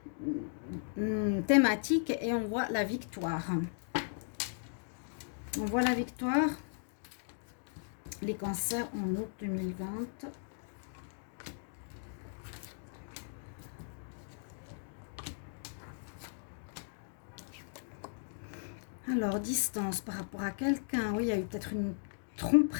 thématique et on voit la victoire. On voit la victoire. Les cancers en août 2020. Alors, distance par rapport à quelqu'un. Oui, il y a eu peut-être une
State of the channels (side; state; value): right; silent; digital silence